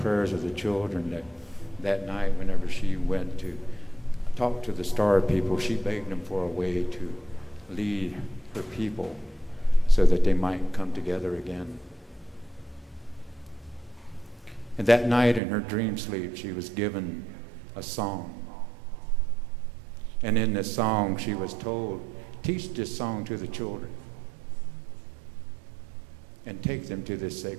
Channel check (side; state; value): left; drops out; at 15.4 s